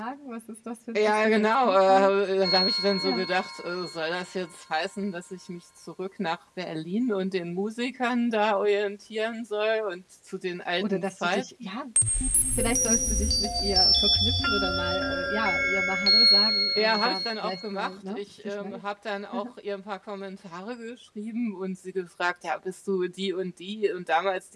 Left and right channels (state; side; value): identical; both; correlation 1.00